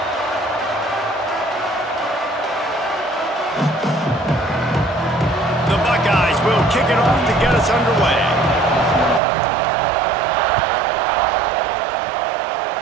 The Buckeyes will kick it off to get us underway.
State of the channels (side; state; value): left; drops out; at 9.2 s